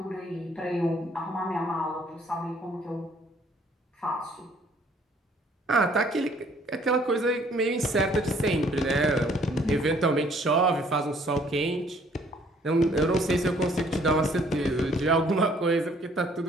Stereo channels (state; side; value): normal; both; correlation 0.61